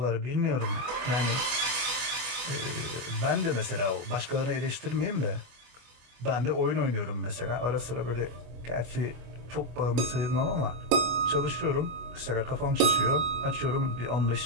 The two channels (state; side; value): late; left; 24 ms